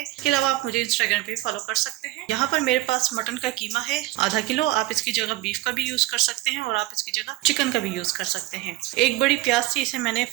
इसके अलावा आप मुझे इंस्टाग्राम पे भी फॉलो कर सकते हैं। यहाँ पर मेरे पास मटन का कीमा है आधा किलो। आप इसकी जगह बीफ का भी यूज कर सकते हैं और आप इसकी जगह चिकन का भी यूज कर सकते हैं। एक बड़ी प्याज थी, इसे मैंने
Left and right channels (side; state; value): left; quieter; 17.9 dB